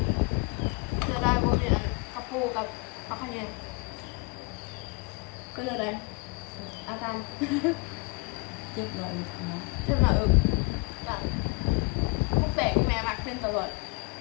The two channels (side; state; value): right; quieter; 29.5 dB